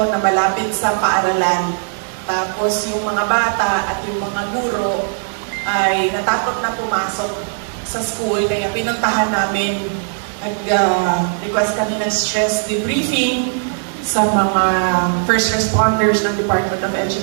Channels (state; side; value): silent; left; digital silence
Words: na malapit sa paaralan. Tapos yung mga bata at yung mga guro ay natakot na pumasok sa school, kaya pinuntahan namin, nag-request kami ng stress debriefing sa mga first responders ng Department of